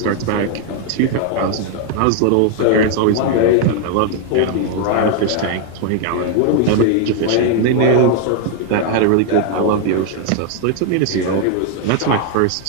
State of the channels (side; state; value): both; different; correlation 0.00